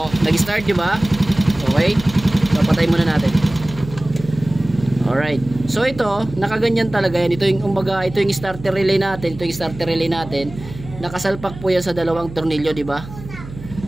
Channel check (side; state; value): right; noise; hum, 14 dB below the sound